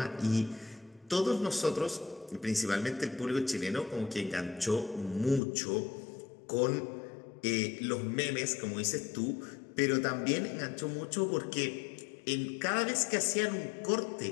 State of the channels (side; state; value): right; drops out; at 5.4 s